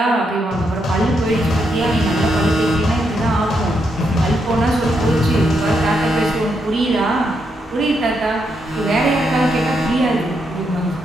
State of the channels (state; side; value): normal; both; correlation 0.80